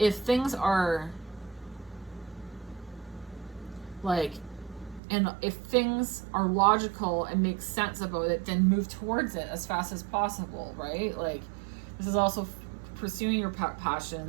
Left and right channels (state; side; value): drops out; left; at 5.0 s